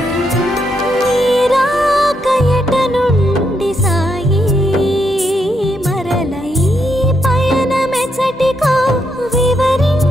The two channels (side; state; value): both; normal; correlation 0.79